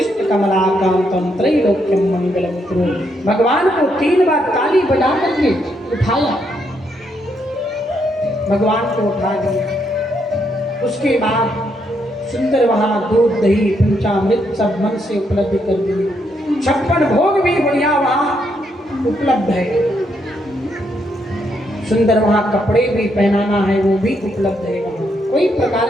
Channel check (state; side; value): normal; both; correlation 0.77